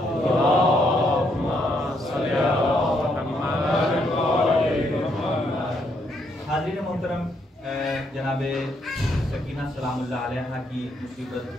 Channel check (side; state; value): both; normal; correlation 0.74